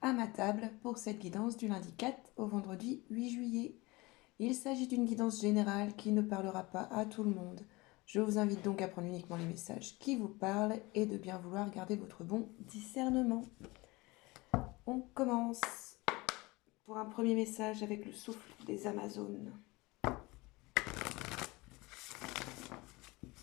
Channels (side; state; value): right; quieter; 23.0 dB